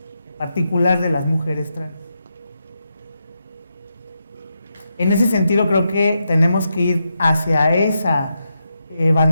particular de las mujeres trans. En ese sentido creo que tenemos que ir hacia esa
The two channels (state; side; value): inverted; both; correlation -0.85